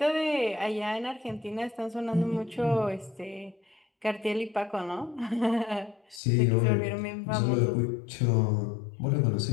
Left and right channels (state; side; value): drops out; right; at 6.2 s